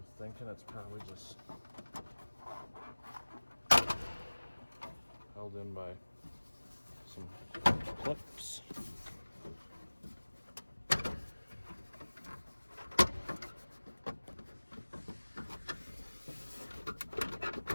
thinking it's probably just held in by some clips.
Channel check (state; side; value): inverted; both; correlation -1.00